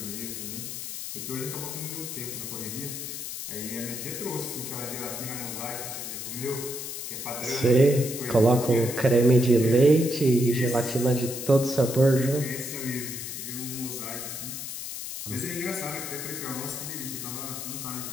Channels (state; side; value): noise; left; hiss, 7 dB below the sound